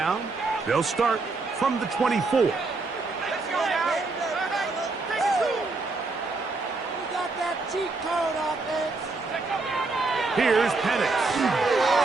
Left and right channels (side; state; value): left; quieter; 3.7 dB